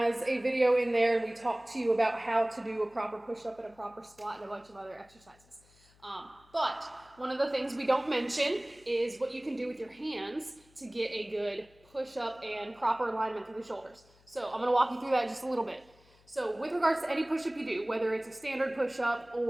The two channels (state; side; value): noise; left; hum, 29 dB below the sound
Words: a video in there, and we talk to you about how to do a proper push-up and a proper squat and a bunch of other exercises. But one of the things we don't mention is what you can do with your hands to get a good push-up and proper alignment through the shoulders. So I'm going to walk you through that just a little bit. So with regards to any push-up you do, whether it's a standard push-up